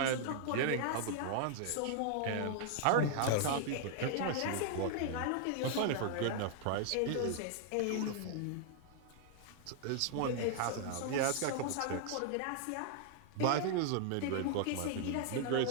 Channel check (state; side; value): different; both; correlation 0.00